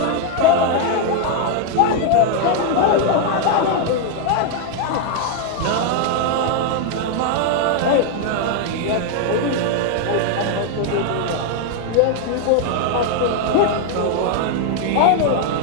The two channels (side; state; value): both; different; correlation 0.00